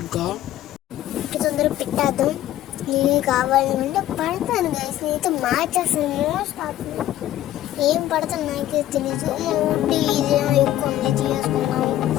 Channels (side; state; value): right; quieter; 13.4 dB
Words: తొందరగా పెట్టేద్దాం నేను కావాలి అంటే పడతాను గైస్ నేనైతే మార్చేస్తాను మోస్ట్ ఏం పడతాను నాకే తెలీదు ఊటీ ఇదేమో ఎక్కువ ఉంది చేసుకున్నాము